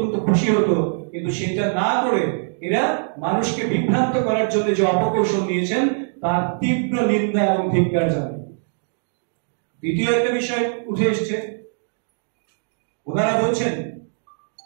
খুশি হতো। কিন্তু সেটা না করে এরা মানুষকে বিভ্রান্ত করার জন্য যে অপকৌশল নিয়েছেন, তার তীব্র নিন্দা এবং ধিক্কার জানাই। দ্বিতীয় একটা বিষয় উঠে এসছে, ওনারা বলছেন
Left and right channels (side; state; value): left; silent; digital silence